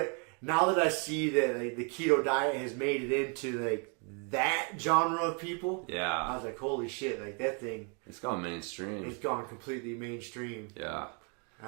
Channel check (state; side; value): quieter; left; 36.7 dB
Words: now that I see that like, the keto diet has made it into like that genre of people, I was like, holy shit! Like that thing, it's gone mainstream. It's gone completely mainstream. Yeah,